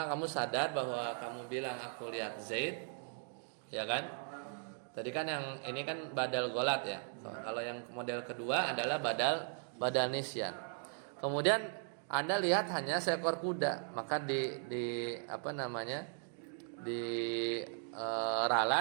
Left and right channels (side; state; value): left; silent; 52 dB below the other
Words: kamu sadar bahwa kamu bilang aku lihat Zaid, ya kan? Tadi kan yang ini kan badal ghalat ya. Kalau yang model kedua adalah badal nisyan. Kemudian Anda lihat hanya seekor kuda, maka